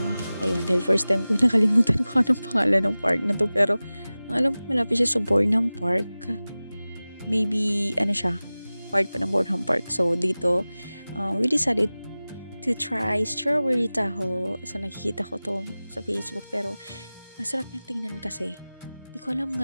Ayun, dahil first time ko nakalimutan ko anong pangalan ng park na to. Pero ang alam ko malapit siya sa Bornham Park. Maybe, ano siya, part pa ng Bornham Park. So dito, we decided to try strawberry taho. So nakikita ko to sa Facebook pero ang sarap niyang tingnan kasi. Hindi ko alam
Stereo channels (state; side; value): inverted; both; correlation -0.97